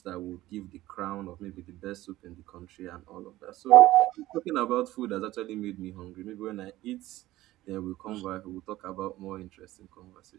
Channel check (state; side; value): quieter; left; 16.3 dB